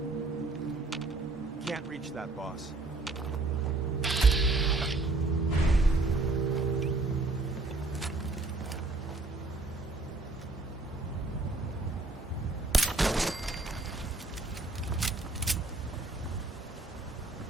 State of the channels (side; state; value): left; quieter; 3.2 dB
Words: Can't reach that, boss.